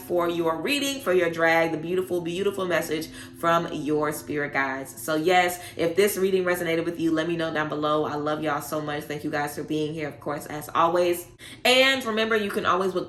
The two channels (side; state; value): both; identical; correlation 1.00